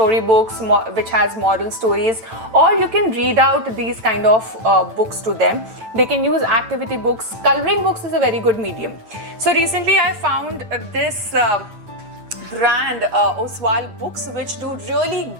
which has moral stories, or you can read out these kind of books to them. They can use activity books. Coloring books is a very good medium. So recently I found this brand, Oswald Books, which do really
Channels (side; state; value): left; late; 9.0 ms